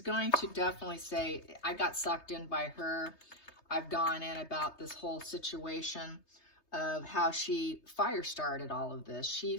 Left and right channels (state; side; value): late; right; 3.3 ms